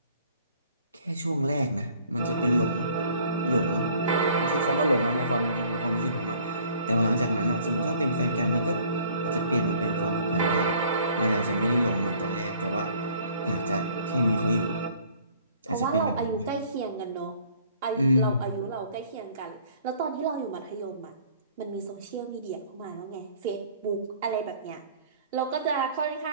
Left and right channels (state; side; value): inverted; both; correlation -0.56